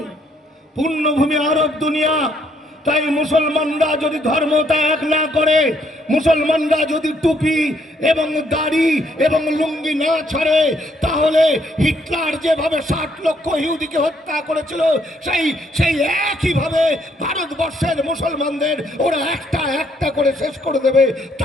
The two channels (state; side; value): normal; both; correlation 0.70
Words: পূর্ণভূমি আরব দুনিয়া। তাই মুসলমানরা যদি ধর্ম ত্যাগ না করে, মুসলমানরা যদি টুপি এবং দাড়ি এবং লুঙ্গি না ছাড়ে, তাহলে হিটলার যেভাবে 60 লক্ষ ইহুদিকে হত্যা করেছিল, সেই একইভাবে ভারতবর্ষের মুসলমানদের ওরা একটা একটা করে শেষ করে দেবে।